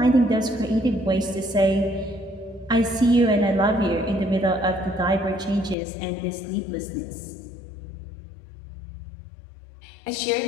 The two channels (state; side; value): drops out; right; at 5.8 s